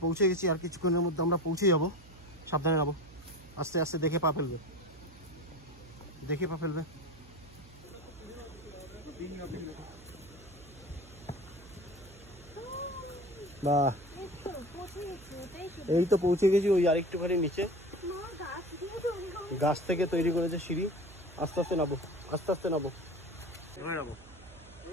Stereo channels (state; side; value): noise; right; hum, 21 dB below the sound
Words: পৌঁছে গেছি, আর কিছুক্ষণের মধ্যে আমরা পৌঁছে যাব। সাবধানে নামো, আস্তে আস্তে, দেখে পা ফেলবে, দেখে পা ফেলবে। বাহ, এই তো পৌঁছে গেছি। ওই আরেকটুখানি নিচে গাছ থেকে তৈরি করেছে সিঁড়ি। আস্তে আস্তে নামো, আস্তে আস্তে নামো, ধরে নামো,